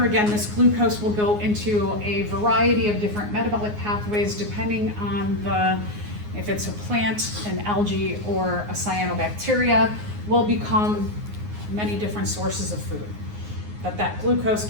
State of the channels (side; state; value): left; late; 9.6 ms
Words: again, this glucose will go into a variety of different metabolic pathways depending on if it's a plant, an algae, or a cyanobacteria, will become many different sources of food. But that glucose